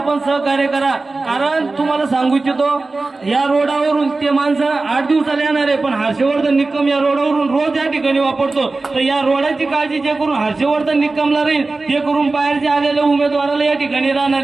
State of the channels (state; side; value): quieter; left; 3.5 dB